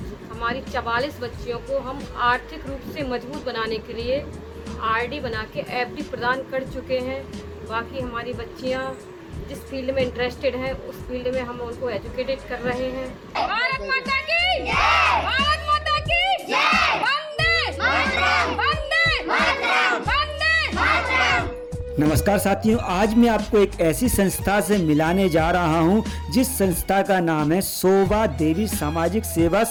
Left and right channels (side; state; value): both; identical; correlation 1.00